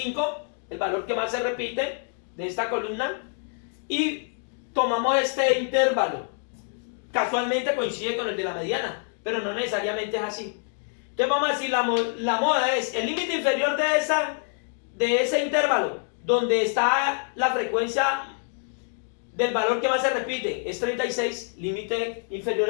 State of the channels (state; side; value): silent; right; 61 dB below the other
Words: el valor que más se repite de esta columna. Y tomamos este intervalo. Casualmente coincide con el de la mediana, pero no necesariamente es así. Entonces vamos a decir, la moda es el límite inferior de ese intervalo, donde está la frecuencia del valor que más se repite, es 36, límite inferior